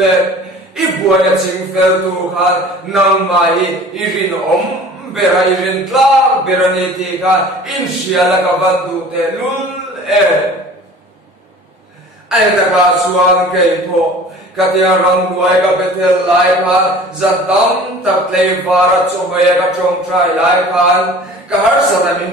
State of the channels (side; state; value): both; normal; correlation 0.44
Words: ibuwa na chingfel tu kan nang mai irin bera irin tla bera niti kan in siya na kabandu te lule ay nakasuan kay po katiya rang duay ka betel lai kan zantam taklay para chumaya ka chong try lai kan kahar sa